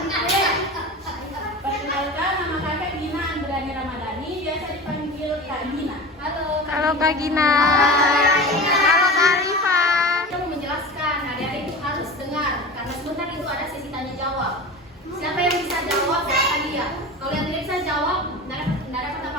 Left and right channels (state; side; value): normal; both; correlation 0.31